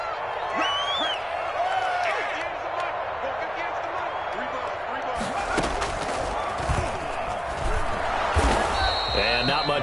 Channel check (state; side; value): identical; both; correlation 1.00